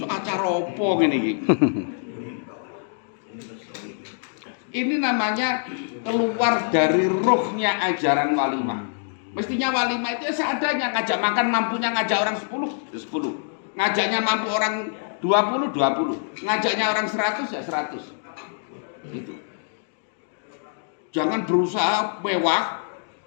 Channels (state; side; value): silent; right; digital silence